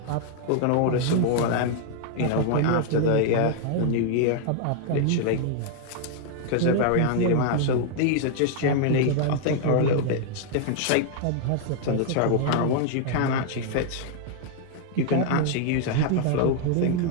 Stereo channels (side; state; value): both; different; correlation 0.00